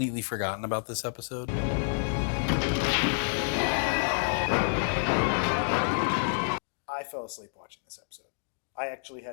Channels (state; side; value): silent; right; digital silence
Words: forgotten about this episode. I fell asleep watching this episode. I actually